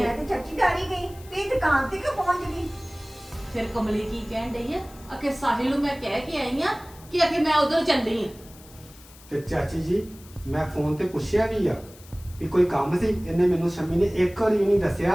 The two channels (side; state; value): left; noise; hiss, 22 dB below the sound